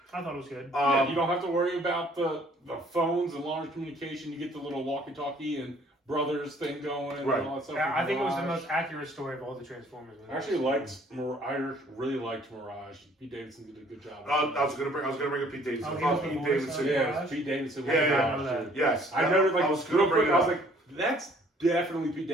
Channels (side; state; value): both; normal; correlation 0.58